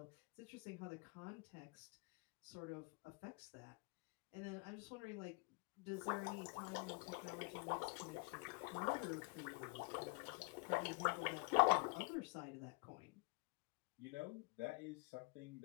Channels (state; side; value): quieter; right; 30.6 dB